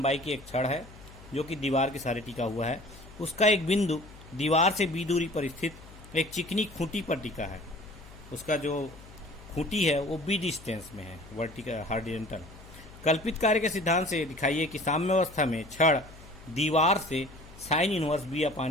की एक छड़ है जो कि दीवार के सहारे टिका हुआ है। उसका एक बिंदु दीवार से b दूरी पर स्थित एक चिकनी खूंटी पर टिका है। उसका जो खूंटी है वो b डिस्टेंस में है, वर्टिकल हॉरिजॉन्टल। कल्पित कार्य के सिद्धांत से दिखाइए कि साम्य अवस्था में छड़ दीवार से साइन इनवर्स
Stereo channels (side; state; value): left; noise; hum, 19 dB below the sound